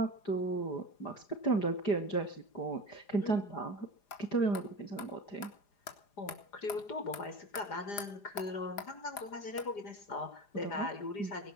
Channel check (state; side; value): late; right; 4.9 ms